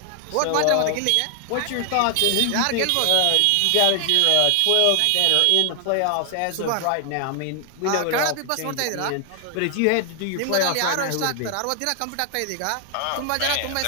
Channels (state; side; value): different; both; correlation 0.00